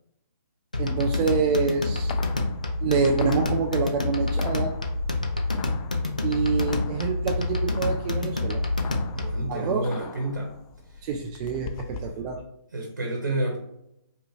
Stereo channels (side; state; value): both; inverted; correlation -0.60